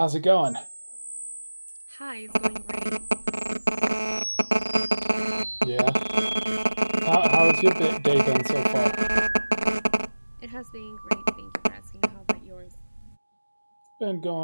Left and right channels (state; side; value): inverted; both; correlation -1.00